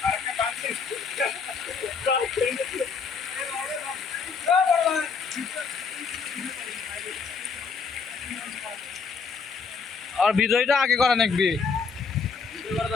আর ভিডিওটা আগে করা লাগবে,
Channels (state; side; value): quieter; right; 5.3 dB